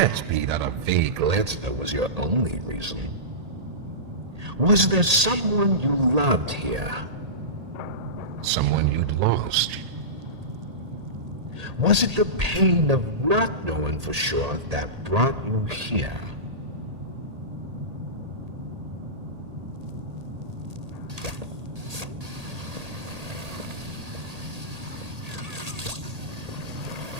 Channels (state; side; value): late; left; 1.8 ms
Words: be that a vague letter was your only reason. Was there someone you loved here? Someone you'd lost? Was it the pain of not knowing for sure that brought you here?